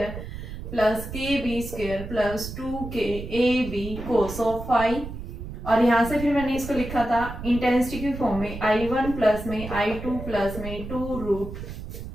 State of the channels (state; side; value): noise; right; rumble, 9 dB below the sound